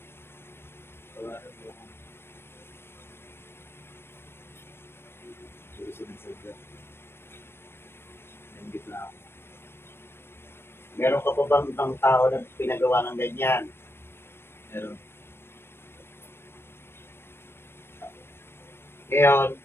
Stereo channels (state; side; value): late; right; 0.12 ms